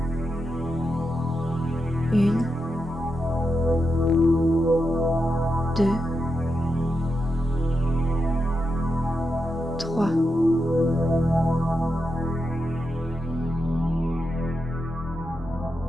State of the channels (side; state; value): both; normal; correlation 0.87